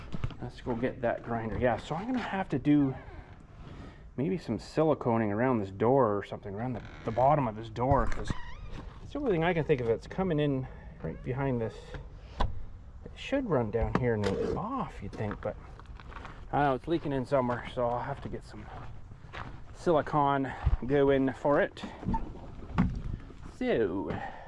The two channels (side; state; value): both; identical; correlation 1.00